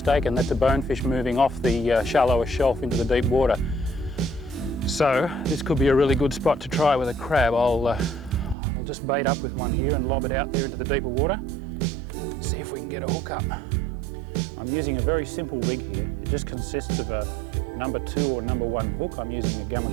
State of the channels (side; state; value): left; drops out; at 8.6 s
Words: that's a bonefish moving off the shallower shelf into the deep water. So this could be a really good spot to try with a crab. I'll just bait up with one here and lob it out there into the deeper water. See if we can get a hook up. I'm using a very simple rig here. It just consists of a number 2 or number 1 hook. I'm using a